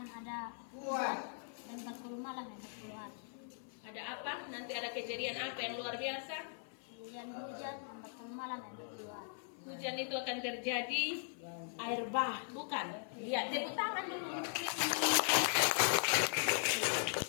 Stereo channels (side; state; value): right; silent; 51 dB below the other